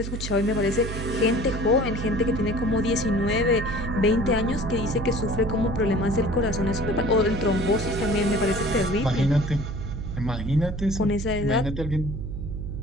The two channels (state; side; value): noise; right; hum, 6 dB below the sound